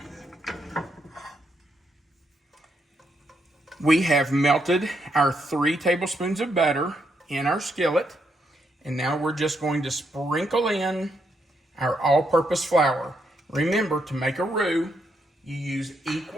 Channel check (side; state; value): both; normal; correlation 0.78